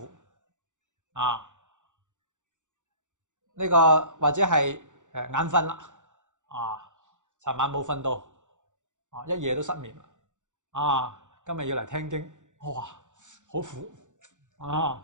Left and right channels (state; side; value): late; left; 0.85 ms